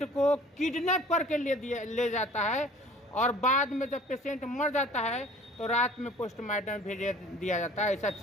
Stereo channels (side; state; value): both; normal; correlation 0.49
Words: को किडनैप करके ले जाता है, और बाद में जब पेशेंट मर जाता है तो रात में पोस्टमार्टम भेज दिया जाता है। ऐसा